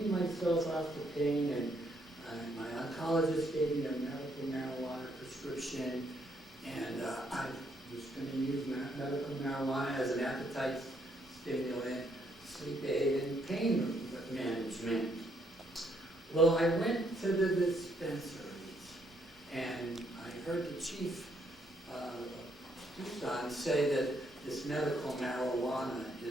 myself off the pain, and my oncologist gave me a medical marijuana prescription, and I was going to use medical marijuana as an appetite stimulant, sleep aid, and pain management. Well, I went to the dispensaries, and I heard the chief Tucson say that this medical marijuana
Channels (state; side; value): normal; both; correlation 0.72